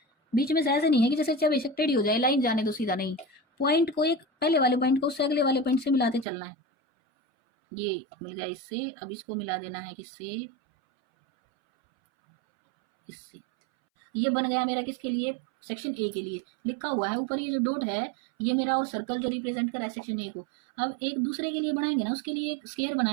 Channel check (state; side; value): drops out; left; at 6.2 s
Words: बीच में से ऐसे नहीं है कि जैसे चाहे बेशक टेढ़ी हो जाए लाइन जाने तो सीधा, नहीं, पॉइंट को एक पहले वाले पॉइंट को उससे अगले वाले पॉइंट से मिलाते चलना है। ये मिल गया इससे, अब इसको मिला देना है किससे, इससे, ये बन गया मेरा किसके लिए, सेक्शन ए के लिए, लिखा हुआ है ऊपर ये जो डॉट है, ये मेरा, और सर्कल जो रिप्रेजेंट कर रहा है सेक्शन ए को। अब एक दूसरे के लिए बनाएंगे ना, उसके लिए एक स्क्वायर